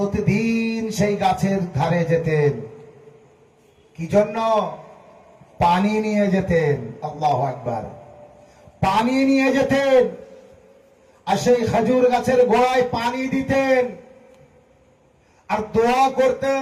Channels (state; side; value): identical; both; correlation 1.00